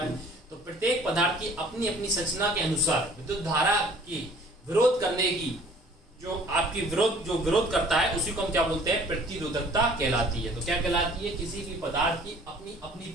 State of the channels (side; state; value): both; normal; correlation 0.52